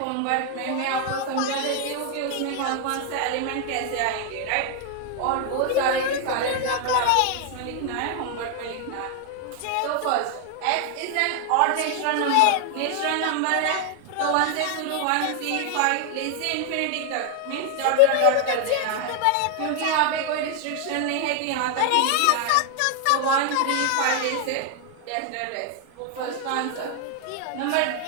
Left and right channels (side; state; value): both; different; correlation 0.00